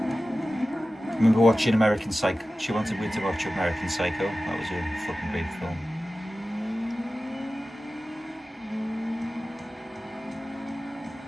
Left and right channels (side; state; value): both; normal; correlation 0.95